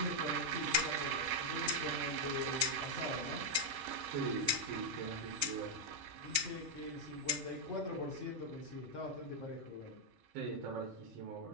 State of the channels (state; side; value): late; left; 4.7 ms